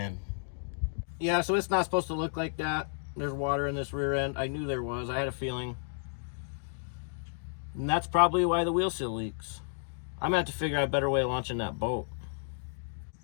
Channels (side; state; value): right; silent; digital silence